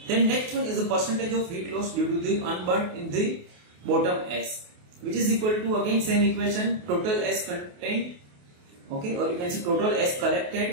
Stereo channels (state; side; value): late; left; 28 ms